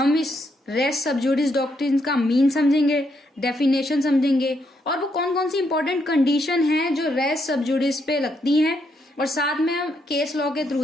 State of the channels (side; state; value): both; normal; correlation 0.77